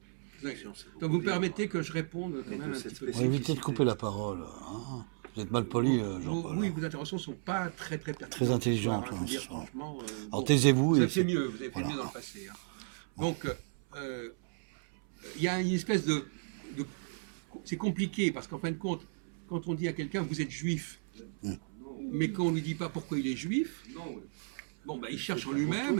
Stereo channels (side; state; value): left; silent; 55 dB below the other